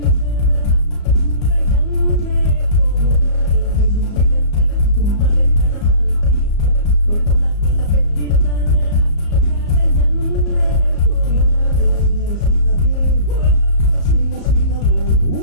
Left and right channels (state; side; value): late; right; 34 ms